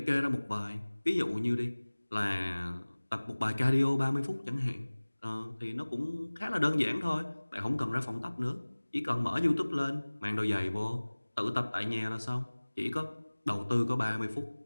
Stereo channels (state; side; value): inverted; both; correlation -1.00